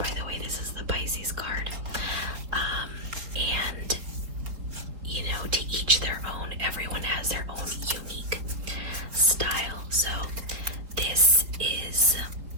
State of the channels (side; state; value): left; late; 4.3 ms